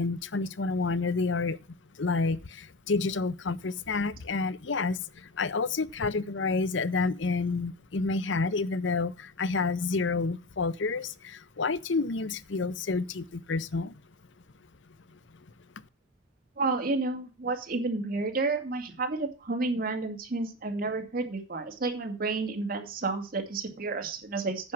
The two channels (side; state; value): both; normal; correlation 0.24